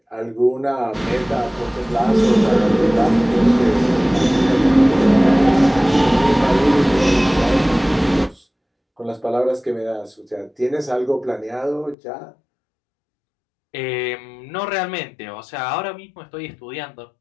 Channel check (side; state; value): right; drops out; at 12.0 s